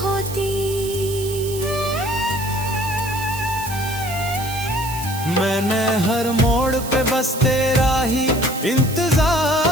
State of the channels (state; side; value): noise; right; hiss, 11 dB below the sound